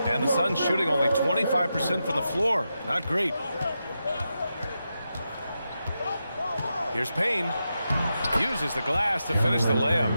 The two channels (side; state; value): both; inverted; correlation -0.88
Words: And the Suns shooting only 25% from the floor. Not great. Here's Payne. Uses the glass to finish the layup.